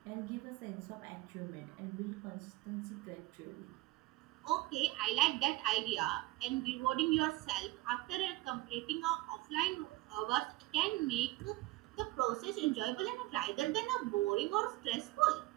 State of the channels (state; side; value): quieter; left; 19.0 dB